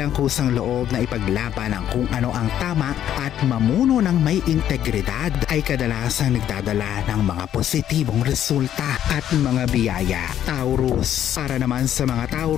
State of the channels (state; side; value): quieter; right; 10.8 dB